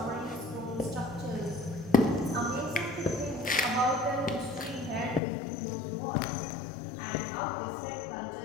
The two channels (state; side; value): drops out; right; at 5.2 s